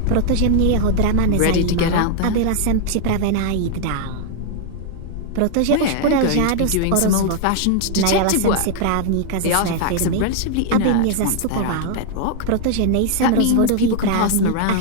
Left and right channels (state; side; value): different; both; correlation 0.00